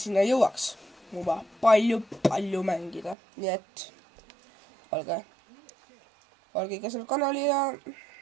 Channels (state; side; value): drops out; left; at 3.2 s